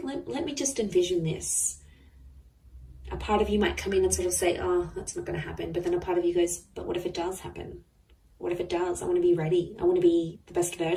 let me just envision this. A part of you might come in and sort of say, oh, that's not going to happen. But then a part of you goes, but what if it does happen? What if it does? I want to be ready. I want to be the best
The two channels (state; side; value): identical; both; correlation 1.00